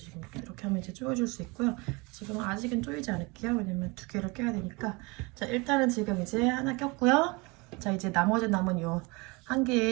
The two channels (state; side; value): quieter; left; 27.0 dB